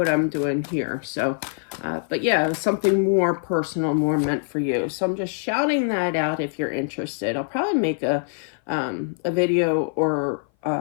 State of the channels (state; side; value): silent; right; 57 dB below the other